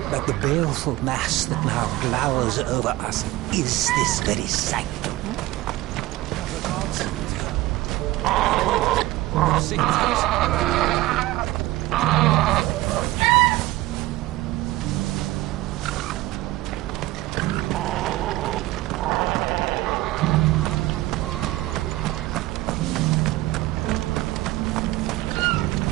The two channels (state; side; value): quieter; left; 17.7 dB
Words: that the baleful mass that now glowers over us is this very sanctum?